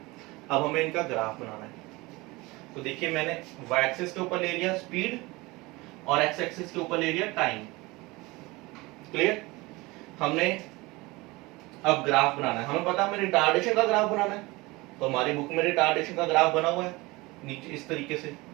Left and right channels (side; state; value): left; quieter; 22.6 dB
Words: अब हमें इनका ग्राफ बनाना है, तो देखिए मैंने y एक्सिस के ऊपर ले लिया स्पीड और x एक्सिस के ऊपर ले लिया टाइम। क्लियर? हमने अब ग्राफ बनाना है, हमें पता है हमें रिटार्डेशन का ग्राफ बनाना है, तो हमारी बुक में रिटार्डेशन का ग्राफ बना हुआ है नीचे इस तरीके से।